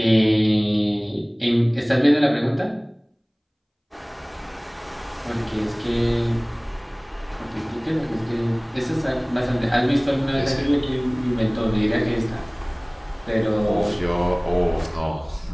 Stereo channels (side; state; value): both; identical; correlation 1.00